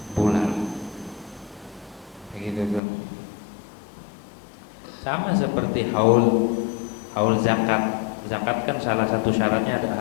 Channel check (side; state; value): right; drops out; at 2.8 s